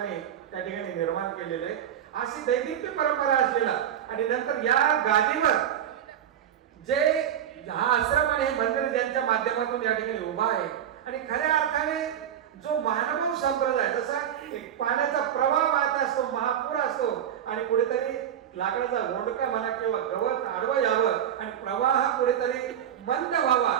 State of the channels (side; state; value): left; quieter; 9.9 dB